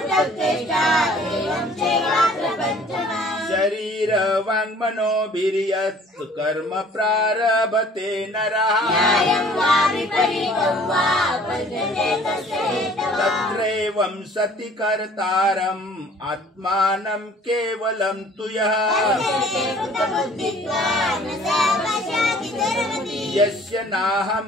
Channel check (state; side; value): normal; both; correlation 0.53